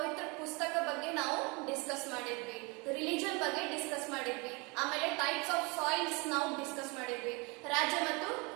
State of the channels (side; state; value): left; quieter; 28.6 dB